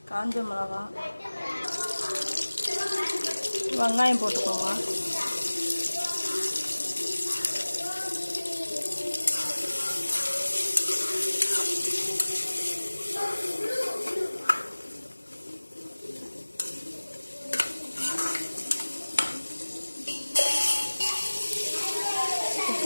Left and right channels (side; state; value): both; inverted; correlation -1.00